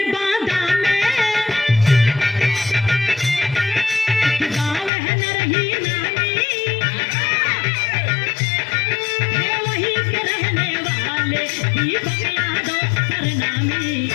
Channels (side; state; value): right; drops out; at 4.9 s